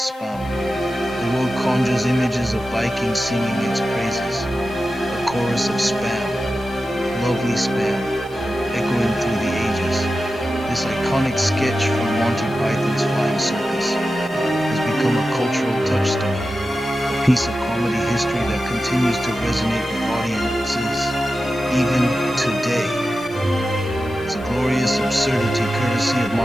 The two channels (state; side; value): noise; left; hiss, 26 dB below the sound